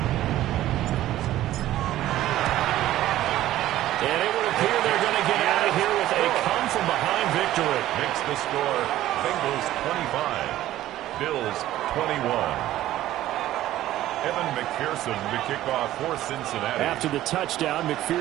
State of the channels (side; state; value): left; quieter; 14.2 dB